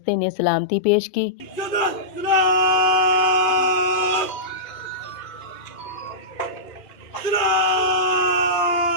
ने सलामती पेश की।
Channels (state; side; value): late; right; 2.4 ms